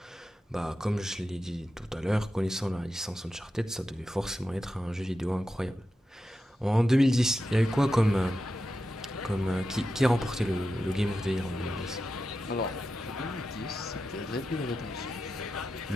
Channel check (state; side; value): normal; both; correlation 0.90